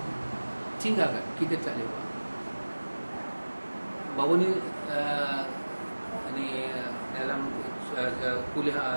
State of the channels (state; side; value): inverted; both; correlation -1.00